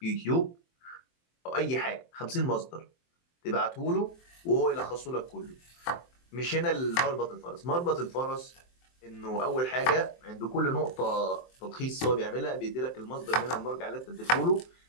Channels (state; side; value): late; right; 23 ms